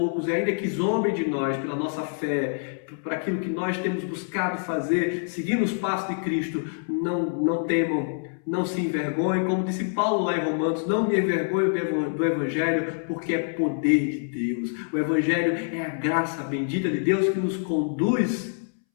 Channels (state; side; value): silent; right; 61 dB below the other